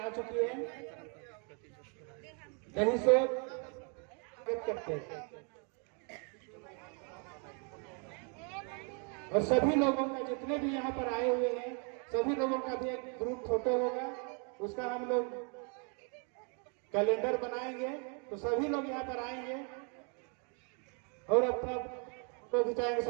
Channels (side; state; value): left; quieter; 38.2 dB